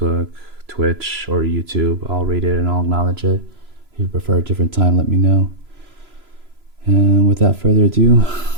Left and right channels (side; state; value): left; late; 3.0 ms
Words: Twitch, or YouTube. I'll read it and I'll acknowledge it. If you prefer a different time, let me know. And without further ado,